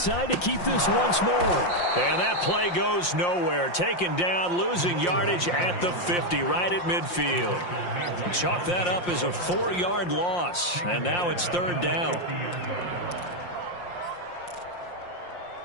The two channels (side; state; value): right; late; 5.7 ms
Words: to keep this once more. And that play goes nowhere. Taken down, losing yardage at the 50, right at midfield. Chalk that up as a 4-yard loss. And now it's 3rd down.